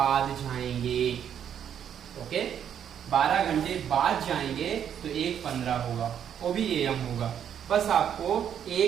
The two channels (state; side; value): quieter; left; 9.0 dB